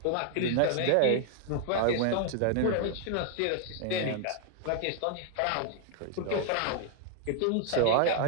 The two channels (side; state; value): both; different; correlation 0.00